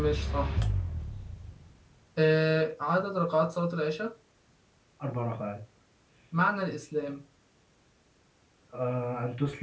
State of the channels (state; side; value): identical; both; correlation 1.00